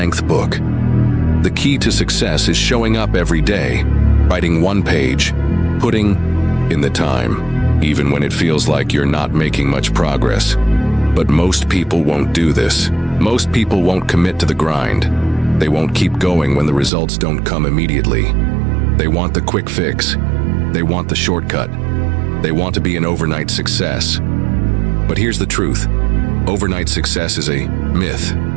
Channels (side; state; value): left; drops out; at 16.9 s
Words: book. The key to success is showing up every day, writing one page, putting in the time, even when it feels like you're not making much progress. But most people won't do this. Most people won't commit to the grind. They won't keep going when the results don't come immediately. They want the quick fix. They want the shortcut. They want to be an overnight success. But here's the truth. Overnight success is a myth.